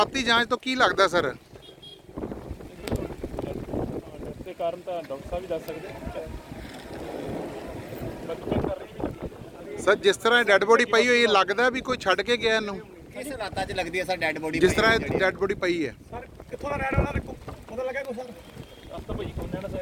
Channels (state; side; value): identical; both; correlation 1.00